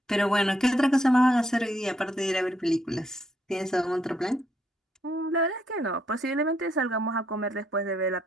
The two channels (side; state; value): both; normal; correlation 0.74